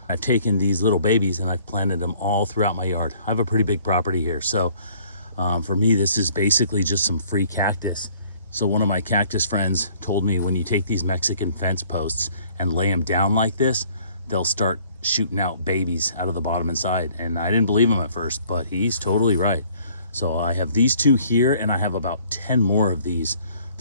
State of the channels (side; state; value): both; inverted; correlation -0.58